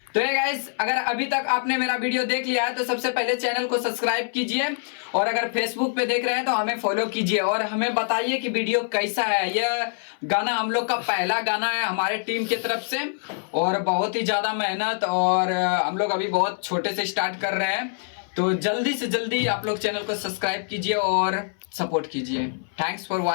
तो ये गाइस, अगर अभी तक आपने मेरा वीडियो देख लिया है तो सबसे पहले चैनल को सब्सक्राइब कीजिए, और अगर फेसबुक पे देख रहे हैं तो हमें फॉलो कीजिए, और हमें बताइए कि वीडियो कैसा है। यह गाना हम लोग का पहला गाना है हमारे टीम की तरफ से, और बहुत ही ज़्यादा मेहनत, और हम लोग अभी बहुत छोटे से स्टार्ट कर रहे हैं। तो जल्दी से जल्दी आप लोग चैनल को सब्सक्राइब कीजिए और सपोर्ट कीजिए। Thanks for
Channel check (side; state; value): right; silent; 62 dB below the other